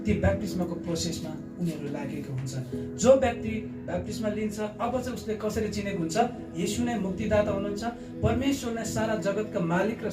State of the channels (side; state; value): both; identical; correlation 1.00